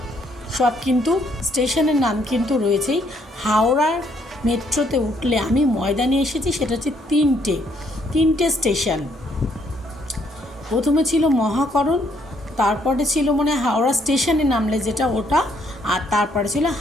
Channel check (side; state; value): both; normal; correlation 0.69